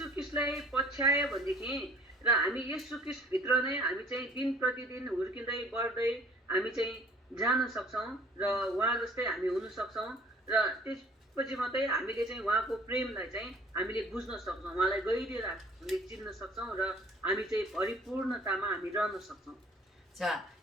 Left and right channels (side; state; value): both; normal; correlation 0.53